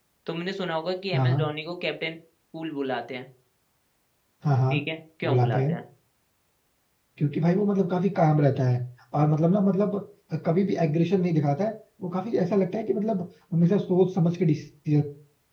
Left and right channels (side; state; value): both; identical; correlation 1.00